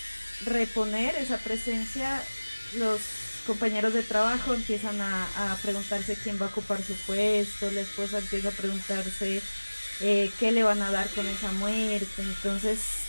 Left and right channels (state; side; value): inverted; both; correlation -1.00